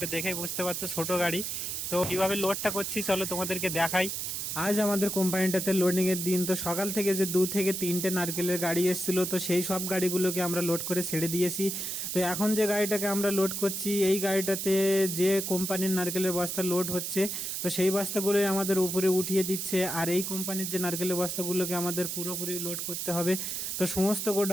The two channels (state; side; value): noise; right; hiss, 3 dB below the sound